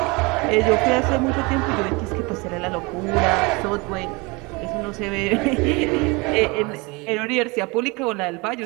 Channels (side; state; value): left; quieter; 26.9 dB